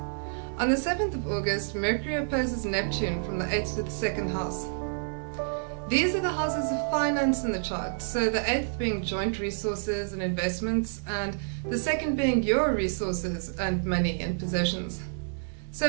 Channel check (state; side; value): silent; left; digital silence